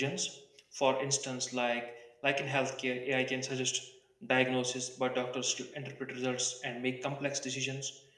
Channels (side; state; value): both; identical; correlation 1.00